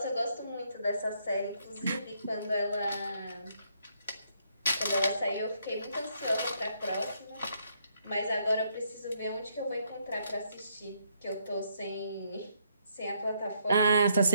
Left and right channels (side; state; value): both; inverted; correlation -0.73